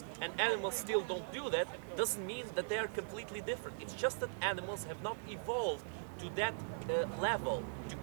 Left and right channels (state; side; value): silent; left; digital silence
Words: and animals still don't do that, doesn't mean that they are completely different. It's just that animals have not evolved to that level to